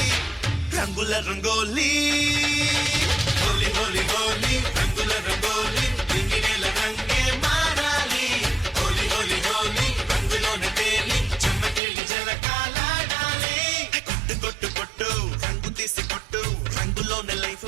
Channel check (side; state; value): left; drops out; at 11.8 s